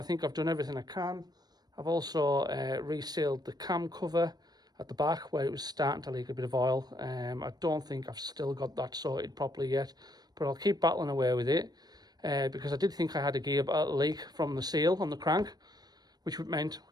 think I've done everything I can. I've also resealed the cam cover at the back where it was starting to leak a bit of oil. I don't think I've still got that sorted properly yet, but I'll keep battling away with it because I did think I had a gear leak from the seal on the crank, which meant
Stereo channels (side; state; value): left; late; 0.19 ms